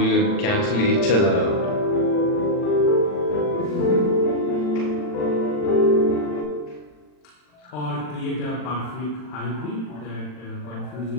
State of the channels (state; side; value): late; right; 40 ms